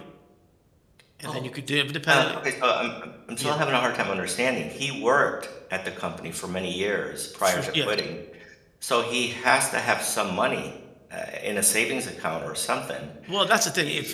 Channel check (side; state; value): both; identical; correlation 1.00